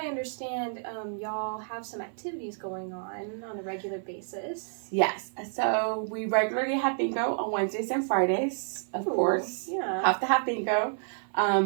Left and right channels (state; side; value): silent; left; 58 dB below the other